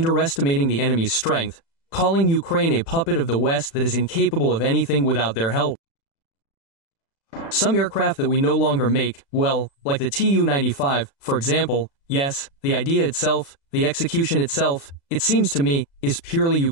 the enemy's strength, calling Ukraine a puppet of the West that is incapable of anything without their help. Some aircraft that we no longer make, well, like the Tu-95, for example, yes, the idea itself, the execution itself, it seems to me, is purely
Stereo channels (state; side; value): late; right; 36 ms